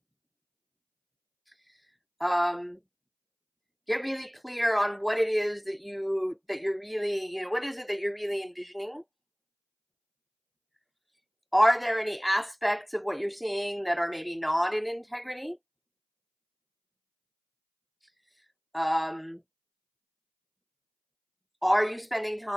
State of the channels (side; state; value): both; identical; correlation 1.00